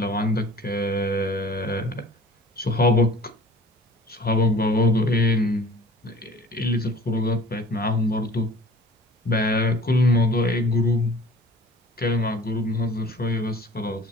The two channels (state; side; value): normal; both; correlation 0.46